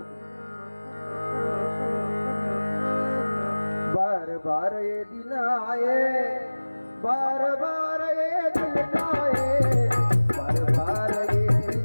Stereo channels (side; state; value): both; inverted; correlation -1.00